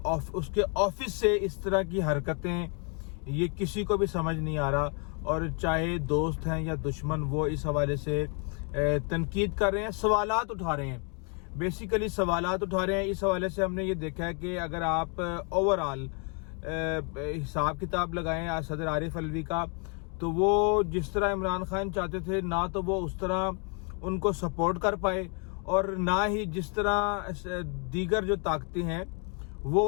ऑफिस से इस तरह की हरकतें, ये किसी को भी समझ नहीं आ रहा। और चाहे दोस्त हैं या दुश्मन, वो इस हवाले से तनकीद कर रहे हैं, सवालात उठा रहे हैं, बेसिकली सवालात उठा रहे हैं। इस हवाले से हमने ये देखा है कि अगर आप ओवरऑल हिसाब किताब लगाएं सदर आरिफ अलवी का, तो वो जिस तरह इमरान खान चाहते थे ना तो वो उस तरह उनको सपोर्ट कर पाए, और ना ही जिस तरह दीगर जो ताकतें हैं वो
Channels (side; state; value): right; quieter; 37.4 dB